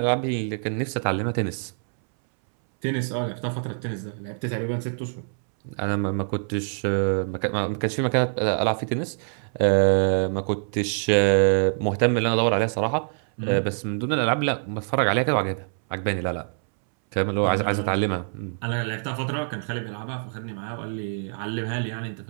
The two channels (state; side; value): silent; left; 62 dB below the other